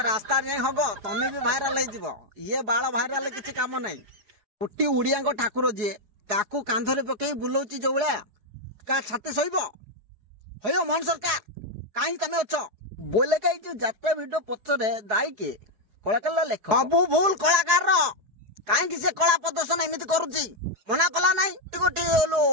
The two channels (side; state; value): left; late; 4.8 ms